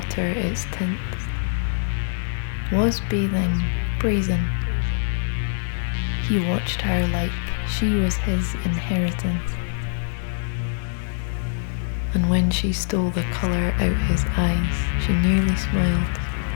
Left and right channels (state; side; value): silent; right; digital silence